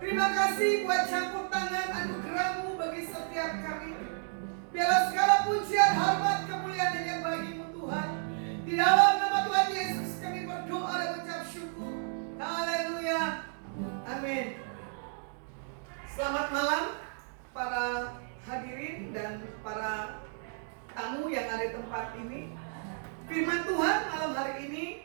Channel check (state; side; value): silent; left; 56 dB below the other